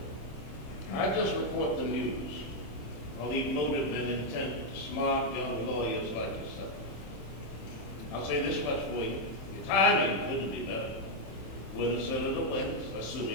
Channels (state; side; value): late; right; 27 ms